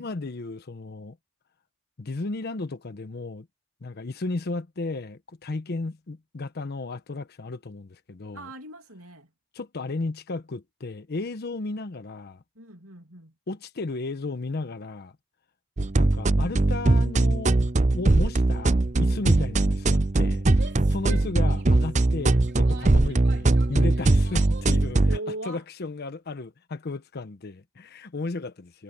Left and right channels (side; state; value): both; normal; correlation 0.85